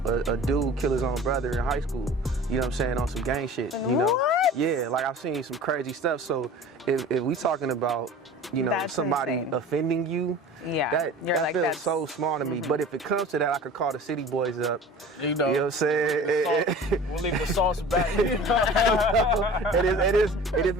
a dude kill his own brother in high school. You know what I'm saying? On some gang shit. You know? What? Yeah, like I've seen some crazy stuff. So if we talking about, you know, That's somebody insane. offending you, Yeah, that you're like, feels that's so small to me. But if it comes to that, I could call the City Boys up. You know what I'm saying? we'll leave the sauce back. It is.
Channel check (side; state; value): both; normal; correlation 0.41